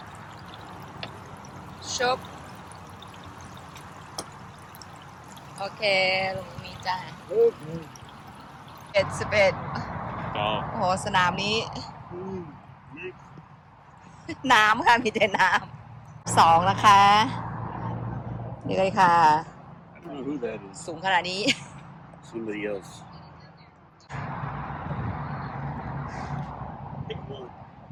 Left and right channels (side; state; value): both; identical; correlation 1.00